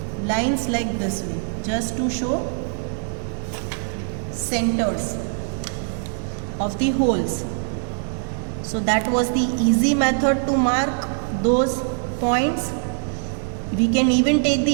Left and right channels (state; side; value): silent; left; 64 dB below the other